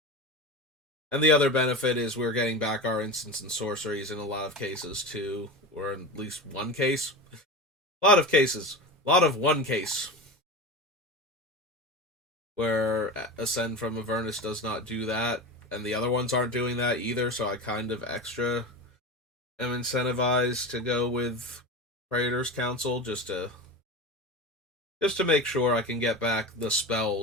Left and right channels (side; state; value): both; normal; correlation 0.27